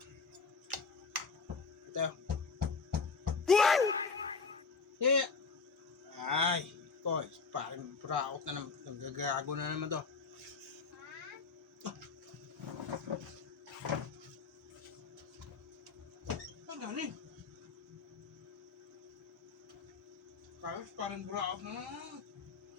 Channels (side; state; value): right; quieter; 4.8 dB